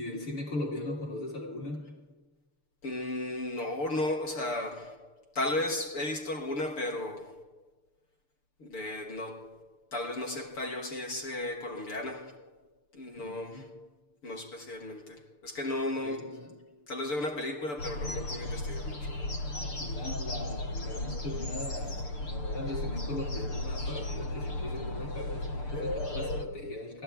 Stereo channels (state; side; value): late; right; 6.8 ms